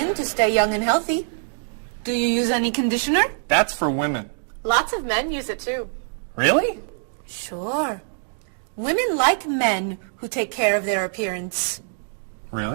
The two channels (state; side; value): silent; left; digital silence